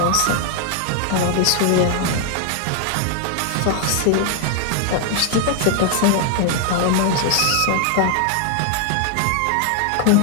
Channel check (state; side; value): different; both; correlation 0.00